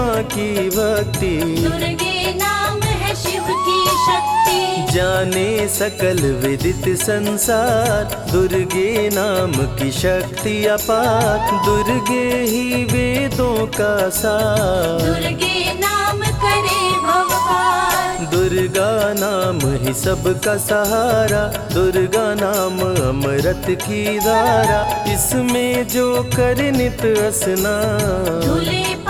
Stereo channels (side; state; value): both; identical; correlation 1.00